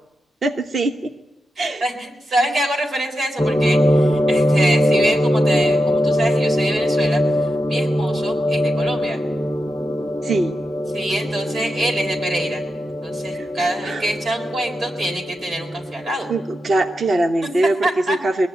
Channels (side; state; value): both; normal; correlation 0.89